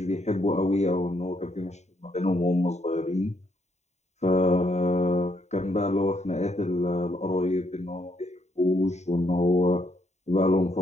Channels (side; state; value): right; late; 0.32 ms